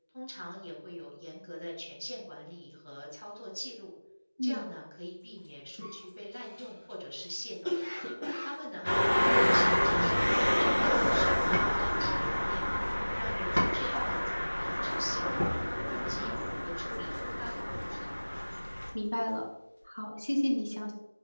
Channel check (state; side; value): inverted; both; correlation -1.00